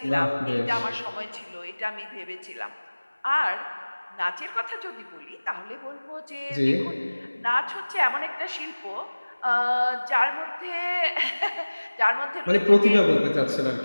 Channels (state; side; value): inverted; both; correlation -1.00